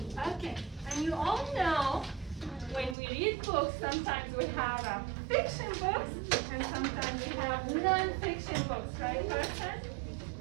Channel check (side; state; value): left; drops out; at 3.0 s